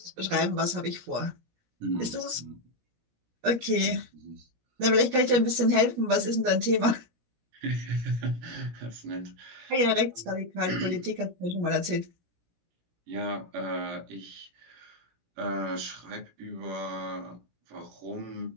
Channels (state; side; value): late; left; 17 ms